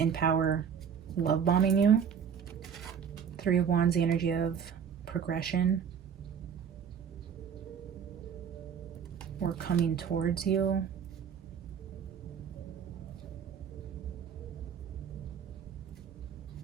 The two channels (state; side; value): quieter; left; 7.5 dB